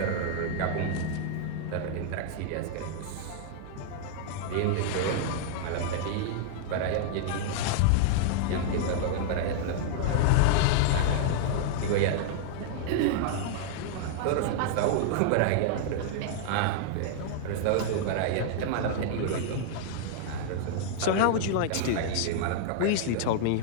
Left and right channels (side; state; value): both; different; correlation -0.01